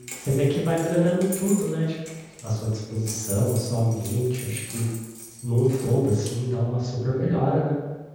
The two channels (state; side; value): identical; both; correlation 1.00